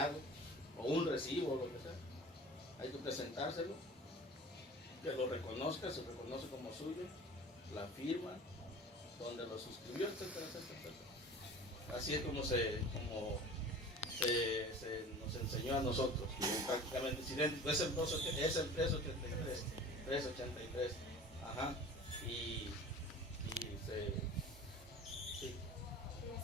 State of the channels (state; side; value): normal; both; correlation 0.40